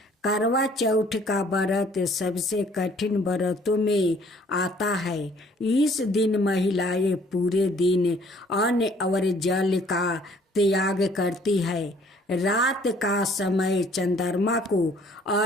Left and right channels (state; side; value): normal; both; correlation 0.59